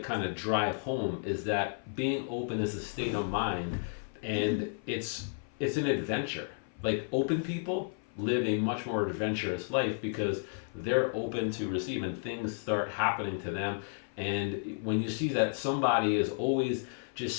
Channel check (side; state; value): right; silent; 56 dB below the other